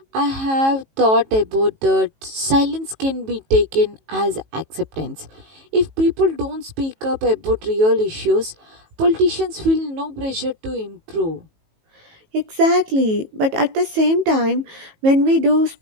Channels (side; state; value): left; late; 18 ms